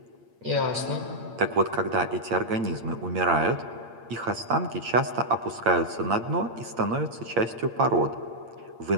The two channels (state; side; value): late; left; 8.7 ms